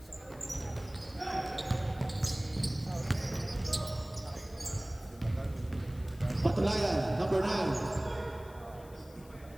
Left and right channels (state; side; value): noise; left; hiss, 24 dB below the sound